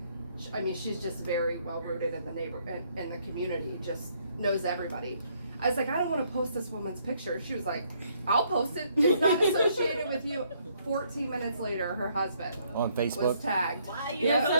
I mean, she's just very well rooted in the in the community, just knows everybody. I was like, I don't want to post this woman's picture. She was like, I'll post it. It's not associated with you. 14 minutes later, her husband On Facebook? was tagged. Why you Yeah,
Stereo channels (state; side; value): inverted; both; correlation -0.69